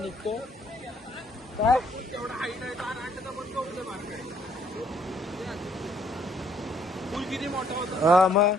निघतो. काय पूल किती मोठा होता? हा मग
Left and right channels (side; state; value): both; normal; correlation 0.66